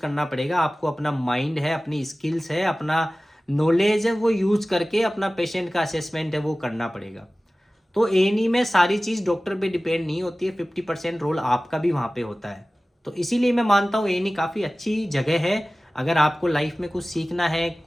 पड़ेगा। आपको अपना माइंड है, अपनी स्किल्स है, अपना नॉलेज है, वो यूज़ करके अपना पेशेंट का असेसमेंट है वो करना पड़ेगा। तो ए में सारी चीज़ डॉक्टर पे डिपेंड नहीं होती है, 50% रोल आपका भी वहाँ पे होता है। तो इसीलिए मैं मानता हूँ ए काफ़ी अच्छी जगह है। अगर आपको लाइफ में कुछ सीखना है,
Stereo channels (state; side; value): normal; both; correlation 0.97